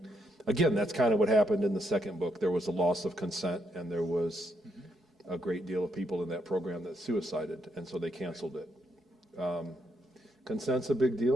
again, that's kind of what happened in the second book. There was a loss of consent, and there was a great deal of people in that program that suicided, and so they canceled it. Consent's a big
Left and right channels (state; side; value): normal; both; correlation 0.77